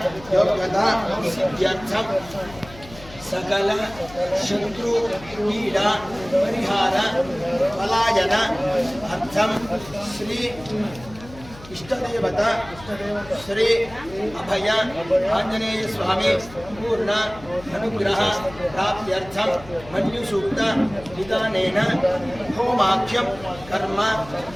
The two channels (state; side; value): noise; left; hum, 18 dB below the sound